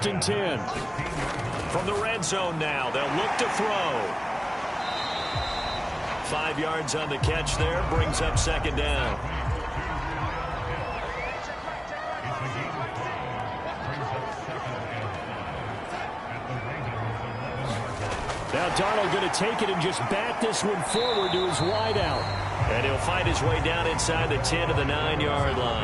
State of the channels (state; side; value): identical; both; correlation 1.00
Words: and 10. From the red zone now, they'll look to throw. 5 yards on the catch there, brings up 2nd down. Now Darnold going to take it and just bat this one forward to his wideout. And he'll fight his way down inside the 10 to the 9-yard